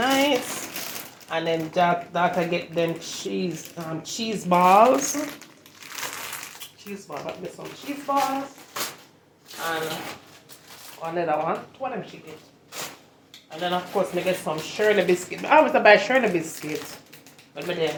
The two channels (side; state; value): both; identical; correlation 1.00